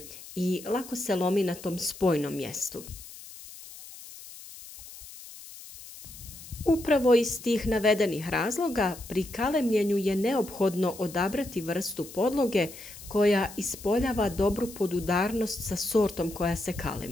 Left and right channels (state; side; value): noise; left; hiss, 16 dB below the sound